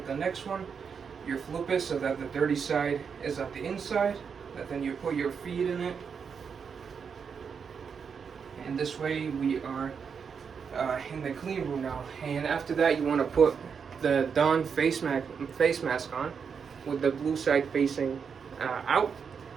next one. You flip it so that the dirty side is at the inside, and then you put your feet in it, and this way we are in the clean room now. And after that, you want to put the Dawn face mask on with the blue side facing out.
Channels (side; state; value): left; quieter; 6.4 dB